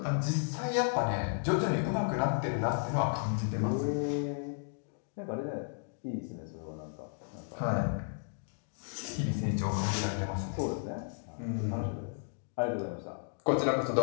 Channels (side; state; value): right; silent; digital silence